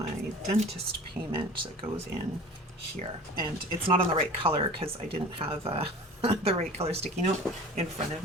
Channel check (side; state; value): both; normal; correlation 0.41